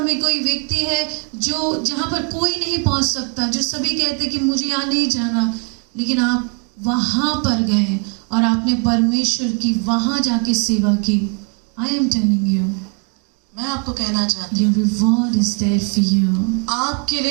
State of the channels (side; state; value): left; quieter; 38.7 dB